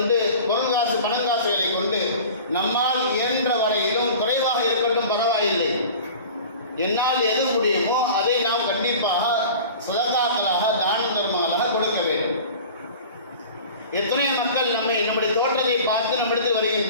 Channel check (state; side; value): inverted; both; correlation -0.40